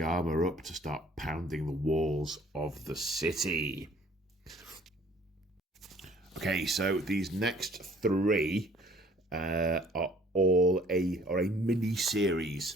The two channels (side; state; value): both; normal; correlation 0.56